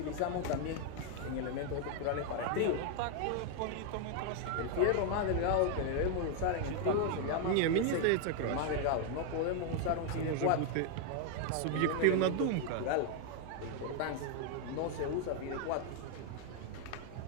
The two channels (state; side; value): different; both; correlation 0.01